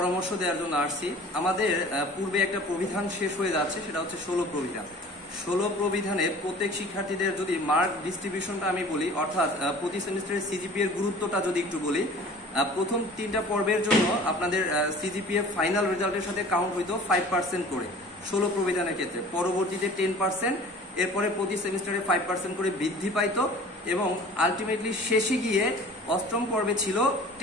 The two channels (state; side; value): normal; both; correlation 0.45